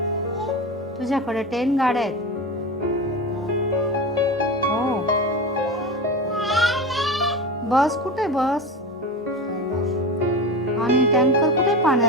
तुझ्याकडे 10 गाड्या आहेत. हो. बस कुठे बस आणि टँकर कुठे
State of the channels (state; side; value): normal; both; correlation 0.24